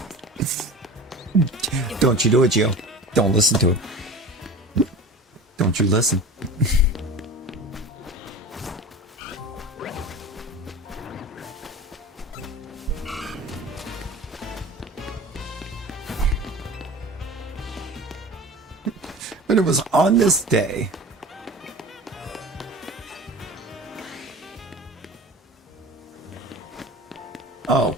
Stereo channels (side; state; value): both; normal; correlation 0.36